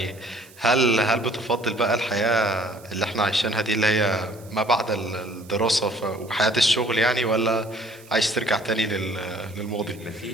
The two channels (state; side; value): noise; right; hiss, 24 dB below the sound